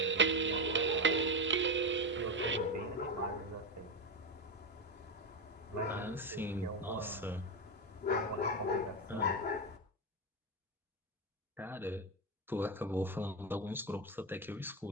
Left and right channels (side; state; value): both; normal; correlation 0.12